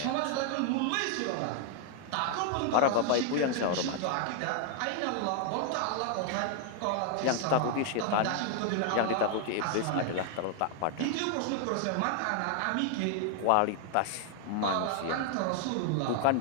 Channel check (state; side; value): different; both; correlation 0.00